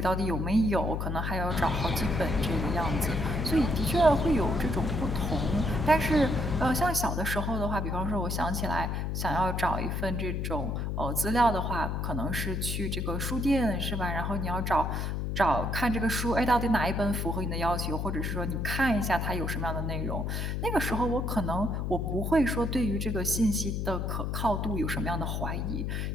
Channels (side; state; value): left; noise; hum, 1 dB below the sound